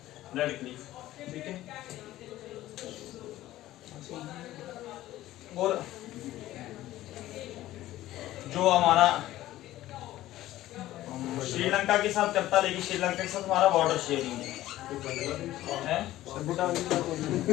रेड क्लिफ, ठीक है। और जो हमारा श्रीलंका के साथ करता, लेकिन श्रीलंका के साथ हमारा बॉर्डर शेयरिंग है। भूटान के साथ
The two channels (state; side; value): quieter; right; 15.0 dB